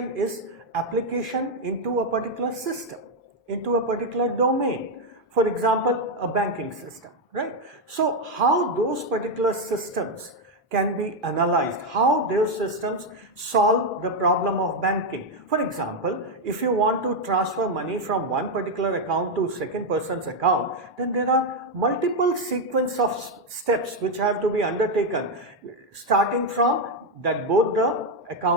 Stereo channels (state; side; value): normal; both; correlation 0.04